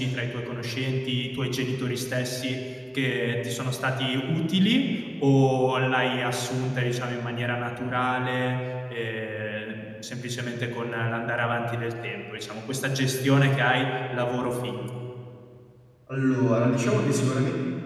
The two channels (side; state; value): both; identical; correlation 1.00